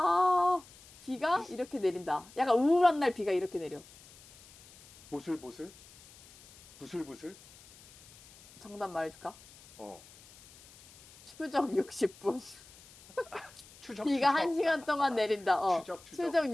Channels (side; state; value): left; noise; hiss, 23 dB below the sound